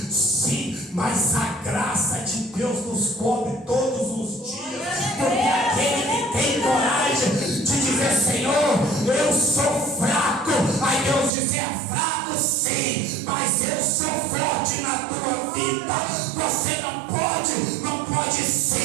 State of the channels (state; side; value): drops out; left; at 11.3 s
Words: mas a graça de Deus nos cobre todos os dias. Porque aquele que tem coragem de dizer: Senhor, eu sou fraco. Aí Deus diz: é fraco sim, mas eu sou forte na tua vida. Você não pode